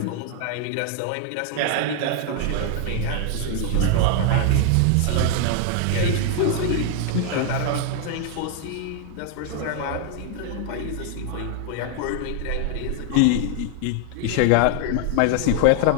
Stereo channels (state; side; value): different; both; correlation 0.00